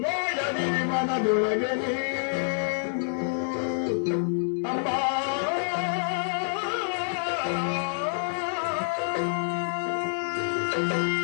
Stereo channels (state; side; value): silent; right; digital silence